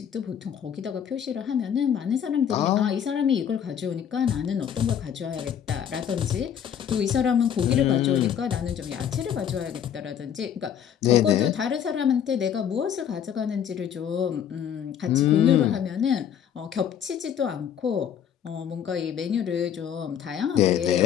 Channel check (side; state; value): right; quieter; 8.9 dB